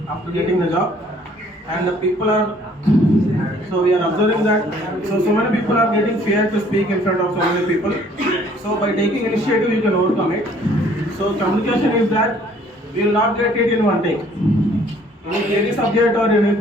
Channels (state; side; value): normal; both; correlation 0.58